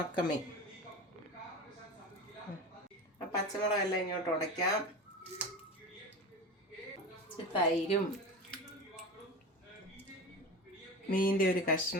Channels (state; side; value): normal; both; correlation 0.28